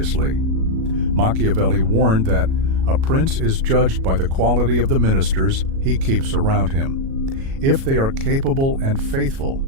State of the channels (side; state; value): left; late; 37 ms